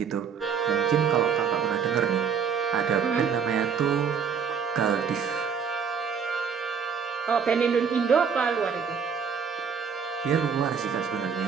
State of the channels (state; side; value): quieter; left; 6.7 dB